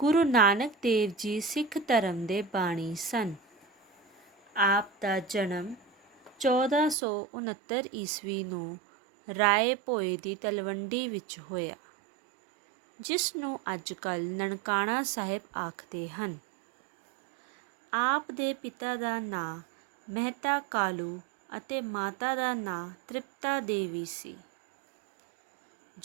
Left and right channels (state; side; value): drops out; left; at 7.0 s